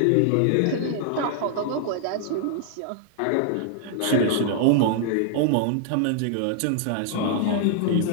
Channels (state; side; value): different; both; correlation 0.00